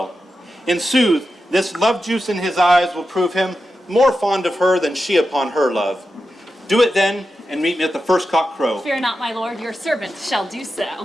In sooth, this love juice in his eyes will prove him more fond of her than she upon her love. Do it then, and meet me at the first cock crow. Fear not, my lord, your servant shall do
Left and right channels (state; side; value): normal; both; correlation 0.90